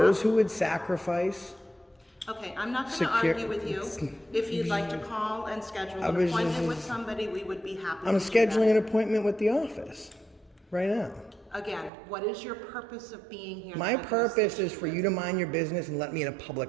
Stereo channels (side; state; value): left; drops out; at 11.9 s